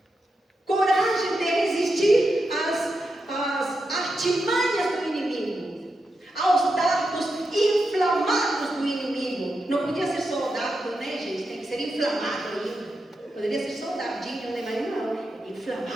artimanhas do inimigo, aos dardos inflamados do inimigo. Não podia ser soldado, né, gente? Tem que ser inflamado ainda. Poderia ser soldadinho, né? Mas não,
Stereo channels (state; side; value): normal; both; correlation 0.87